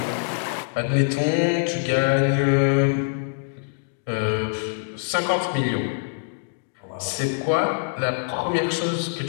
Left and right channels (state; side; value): silent; right; digital silence